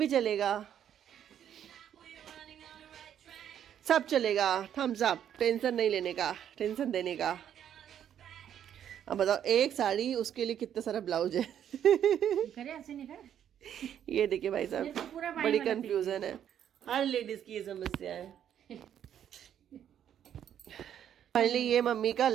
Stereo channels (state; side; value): quieter; left; 9.7 dB